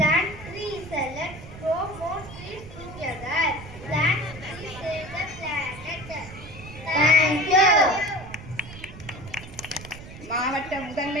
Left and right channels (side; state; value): right; noise; rumble, 15 dB below the sound